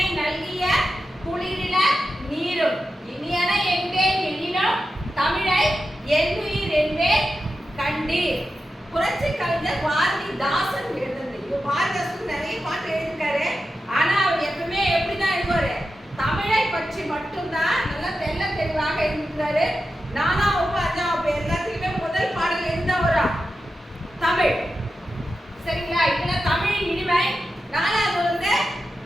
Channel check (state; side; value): normal; both; correlation 0.91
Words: நல்கிய குளிரில நீரும். இனியன என்பேன் எனினும் தமிழை என்னுயிர் என்பேன் கண்டீர். புரட்சி கவிஞர் பாரதிதாசன் எழுதுனது. பாரதிதாசன் நிறைய பாட்டு எழுதிருக்காரு. ஆனா அவர் எப்பவுமே எப்படிதான் எழுதுவாரு? தமிழை பற்றி மட்டும்தான் நல்லா தெல்ல தெளிவாக எழுதிருக்காரு. 4ஆம் வகுப்பு 5ஆம் வகுப்பு எல்லாத்துக்குமே முதல் பாடல் எந்த வரும்? தமிழ். சரிங்களா? இதுல தமிழின் இனிமை. 4வது வந்து